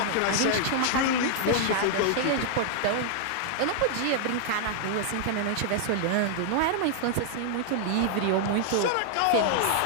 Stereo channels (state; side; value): different; both; correlation -0.01